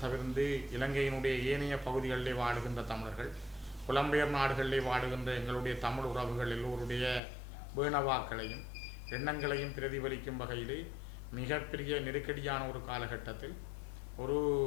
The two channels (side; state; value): right; drops out; at 7.2 s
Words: தவிர்த்து இலங்கையினுடைய ஏனைய பகுதிகளிலே வாழுகின்ற தமிழர்கள், புலம்பெயர் நாடுகளிலே வாழுகின்ற எங்களுடைய தமிழ் உறவுகள் எல்லோருடைய வேணவாக்களையும் எண்ணங்களையும் பிரதிபலிக்கும் வகையிலே மிகப்பெரிய நெருக்கடியான ஒரு காலகட்டத்தில், ஒரு